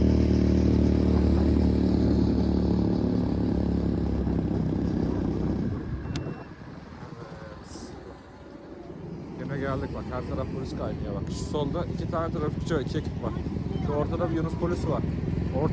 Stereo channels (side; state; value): both; identical; correlation 1.00